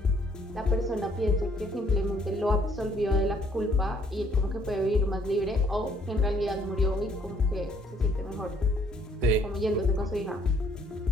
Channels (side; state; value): both; normal; correlation 0.65